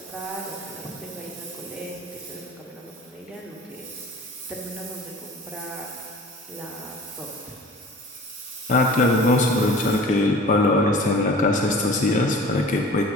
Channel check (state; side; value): normal; both; correlation 0.43